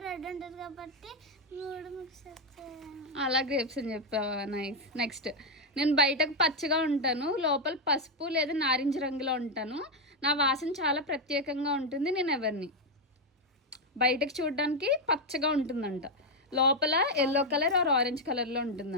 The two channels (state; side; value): normal; both; correlation 0.03